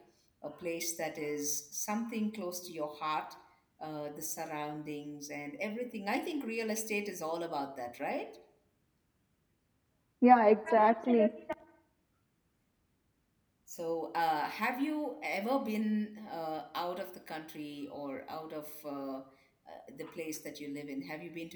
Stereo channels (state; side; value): identical; both; correlation 1.00